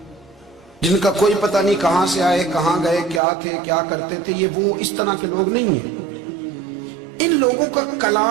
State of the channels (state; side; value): drops out; left; at 3.2 s